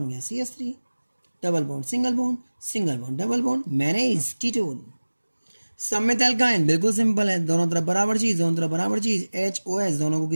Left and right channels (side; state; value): both; inverted; correlation -1.00